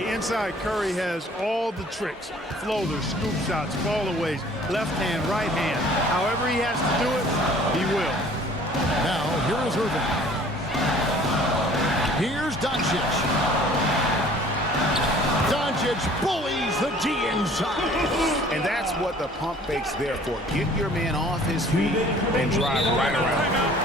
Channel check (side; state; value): both; normal; correlation 0.52